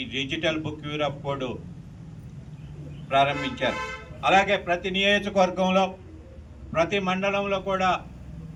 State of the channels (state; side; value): identical; both; correlation 1.00